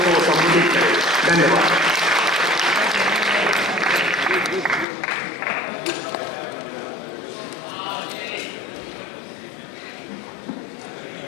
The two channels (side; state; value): right; drops out; at 4.9 s